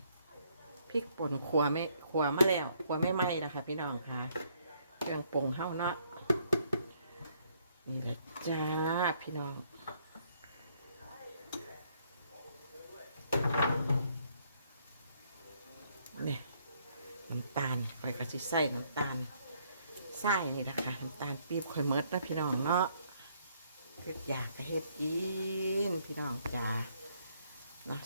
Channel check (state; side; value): inverted; both; correlation -0.69